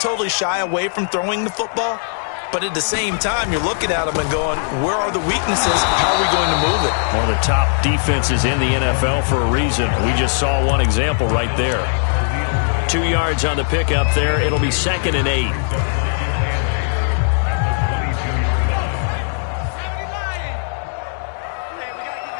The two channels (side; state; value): right; silent; digital silence